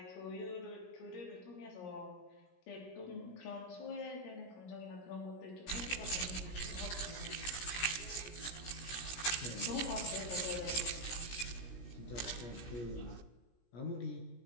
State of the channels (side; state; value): right; late; 17 ms